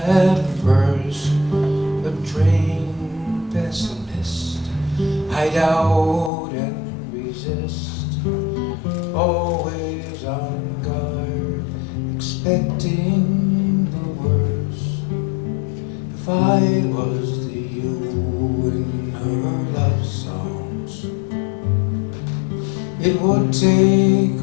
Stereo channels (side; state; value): right; drops out; at 6.3 s